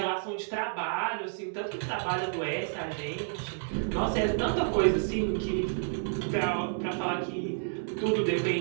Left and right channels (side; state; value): left; silent; digital silence